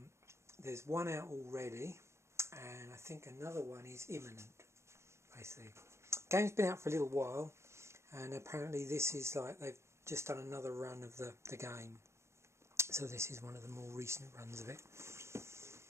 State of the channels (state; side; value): late; left; 0.13 ms